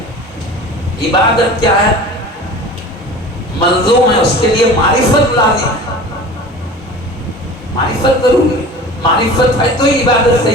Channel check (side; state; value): both; normal; correlation 0.38